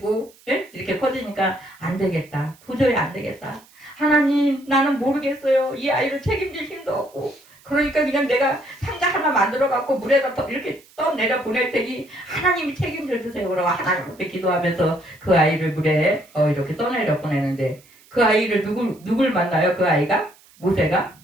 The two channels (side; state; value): right; noise; hiss, 28 dB below the sound